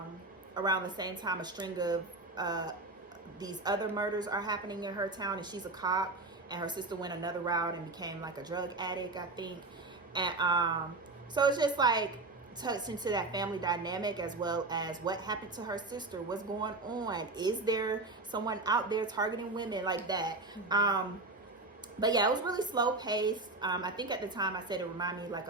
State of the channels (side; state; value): left; quieter; 3.3 dB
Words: the same time a string of these other murders are happening in her town, and she's a cop, and her sister went another route and became like a drug addict, I think. And so it's just like touched into that family dynamic, as well as what happened to her sister, what's going on, is there someone out there targeting women like that. But yeah, it was really slow paced. I think at the time I said it reminded me like